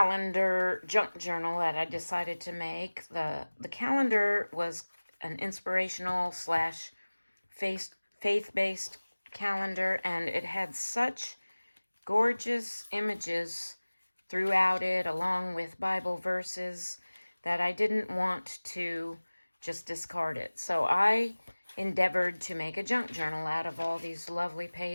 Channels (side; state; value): both; inverted; correlation -1.00